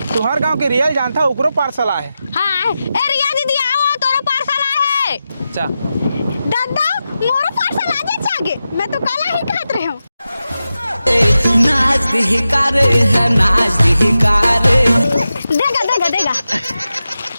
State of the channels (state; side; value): inverted; both; correlation -0.91